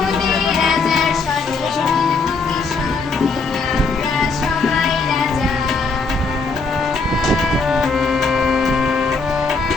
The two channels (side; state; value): right; quieter; 4.2 dB